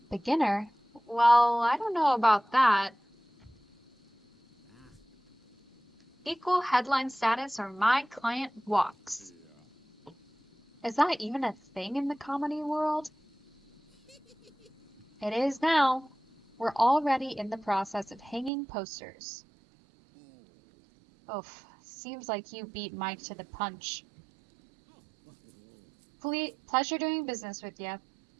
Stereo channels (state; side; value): drops out; left; at 18.5 s